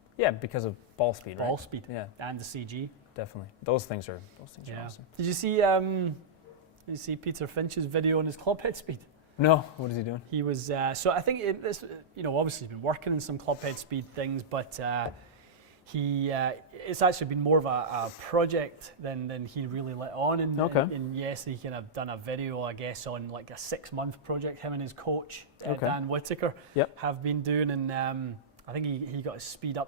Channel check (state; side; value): normal; both; correlation -0.11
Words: Yeah, because of ball speed. Ball speed. Yeah, and the CG. Definitely, those things are awesome. Did you see Peter Finch's video on his club head speed? No. What is he doing? He was so I think obviously he's been working on some club head speed things, but it's actually been more of a project than he really let on. And yes, he kind of done a video, I guess, on like a 6-month project. Him and his coach, Dan Whitaker, have been doing. And I think he got his speed